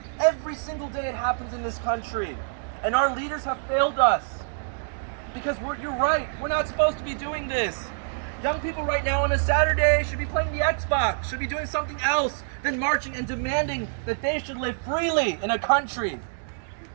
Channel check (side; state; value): left; silent; digital silence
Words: Every single day it happens in this country. And our leaders have failed us. Because you're right, we're not supposed to be doing this. Young people right now on a Saturday should be playing the Xbox, should be doing something else than marching and demanding that they should live freely in a country